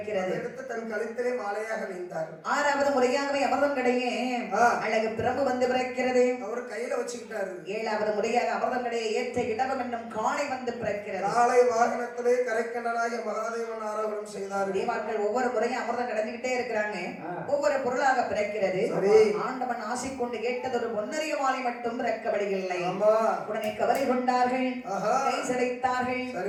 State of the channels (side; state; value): both; identical; correlation 1.00